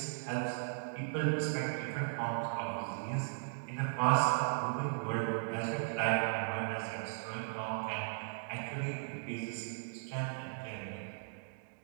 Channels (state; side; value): silent; left; digital silence